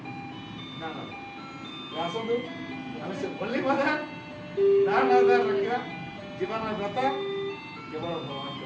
ନା ଆସନ୍ତୁ ଆମେ ସେ ଓନ୍ଲି ମଦର ନା ରଖିବା ଜୀବନର ବ୍ରତ କେବଳ ଭଗବାନଙ୍କ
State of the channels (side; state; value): both; identical; correlation 1.00